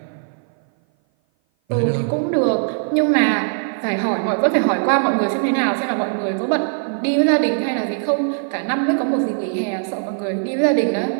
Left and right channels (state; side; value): silent; left; 57 dB below the other